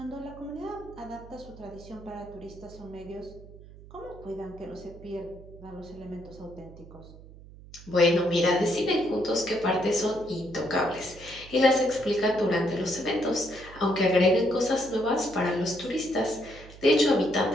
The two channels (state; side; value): noise; right; hum, 19 dB below the sound